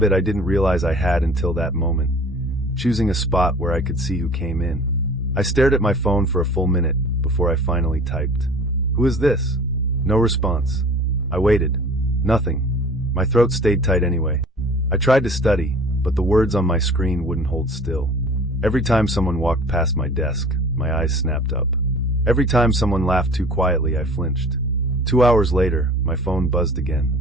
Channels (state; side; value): normal; both; correlation 0.45